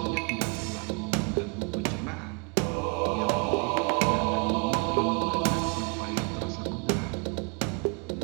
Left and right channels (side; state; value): left; quieter; 34.4 dB